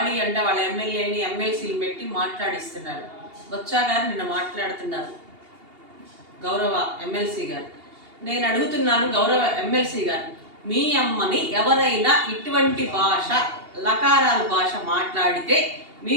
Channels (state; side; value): late; left; 2.8 ms